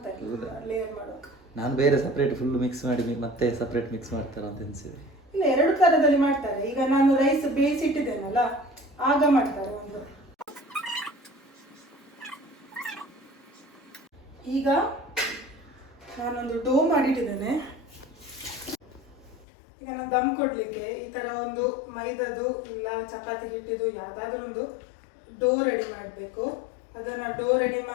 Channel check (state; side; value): drops out; right; at 19.5 s